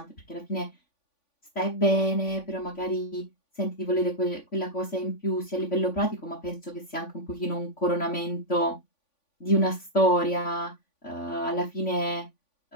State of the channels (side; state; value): right; late; 3.5 ms